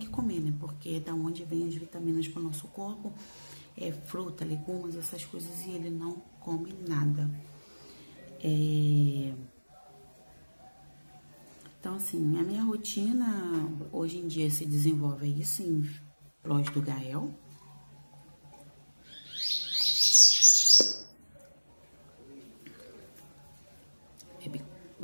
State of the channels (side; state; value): both; inverted; correlation -1.00